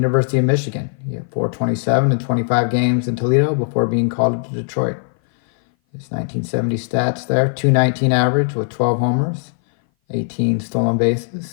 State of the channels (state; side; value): silent; right; 58 dB below the other